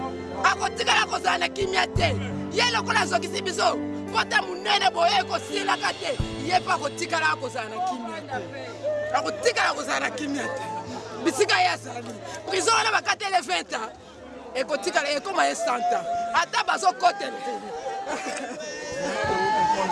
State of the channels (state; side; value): identical; both; correlation 1.00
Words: akotikala akozala na kimia te yelo kola zokisi biso pota munene boye kosilaka te ye pa kotikala akozala na kimia te akotikala akozala na kimia te bisika yazali prison wana bakatele 20 ans ekotikala ekoma ye 100 ans ata bazokotela